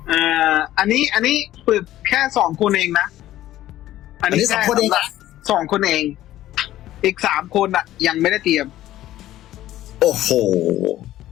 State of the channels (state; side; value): quieter; right; 14.0 dB